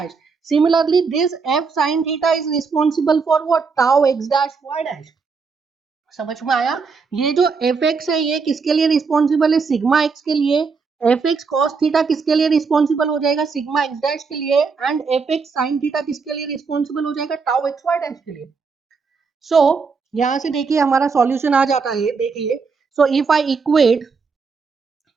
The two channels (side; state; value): left; quieter; 5.1 dB